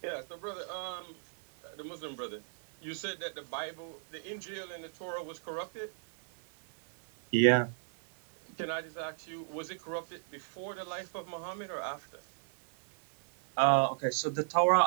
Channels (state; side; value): silent; left; 55 dB below the other